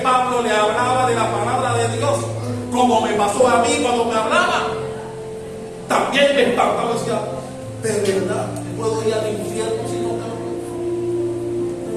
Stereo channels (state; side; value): identical; both; correlation 1.00